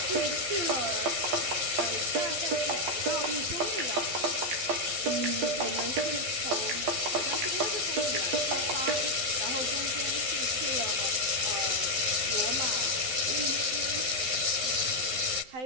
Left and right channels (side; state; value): left; late; 12 ms